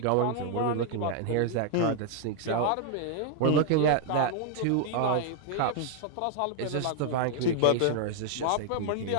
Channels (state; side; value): different; both; correlation 0.00